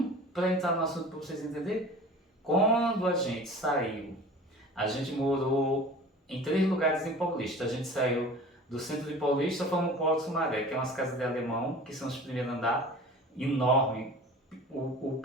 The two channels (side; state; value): both; normal; correlation 0.41